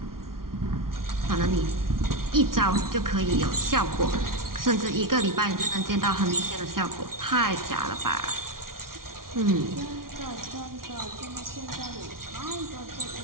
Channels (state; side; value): late; left; 0.92 ms